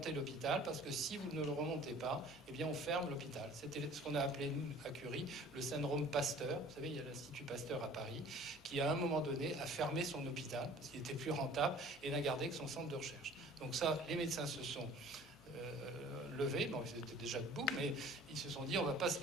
l'hôpital, parce que si vous ne le remontez pas, eh bien on ferme l'hôpital. C'était ce qu'on a appelé, nous, à Curie, le syndrome Pasteur. Vous savez, il y a l'Institut Pasteur à Paris, qui à un moment donné a fermé son hôpital, parce qu'il était plus rentable, et n'a gardé que son centre de recherche. Donc ça, les médecins se sont levés, bon, ils étaient déjà debout, mais ils se sont dit on va pas se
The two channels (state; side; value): normal; both; correlation 0.48